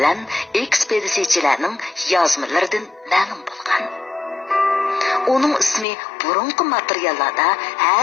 ekspeditsiyachilarning yozmalaridan ma'lum bo'lgan. Uning ismi burungi materiallarda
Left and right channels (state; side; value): drops out; right; at 5.9 s